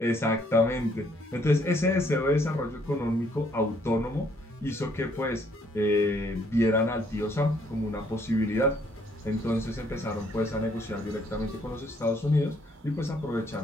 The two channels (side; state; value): both; normal; correlation 0.67